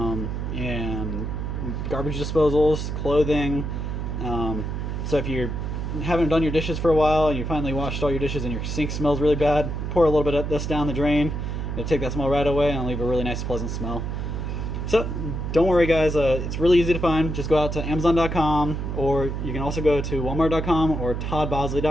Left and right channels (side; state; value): right; noise; hum, 3 dB below the sound